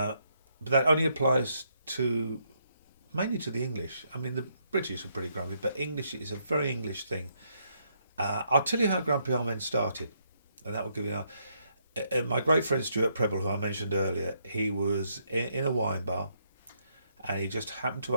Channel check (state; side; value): inverted; both; correlation -0.75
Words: that only applies mainly to the English. I mean, the British are pretty grumpy, but English is a very English thing. I'll tell you how grumpy old men started, and that will give you my great friend Stuart Preble, who I mentioned earlier. He was in a wine bar, and he just happened to